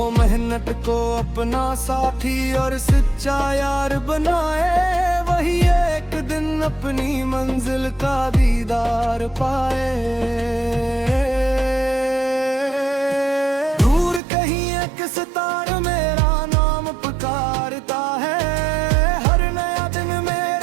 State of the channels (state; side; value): drops out; left; at 14.2 s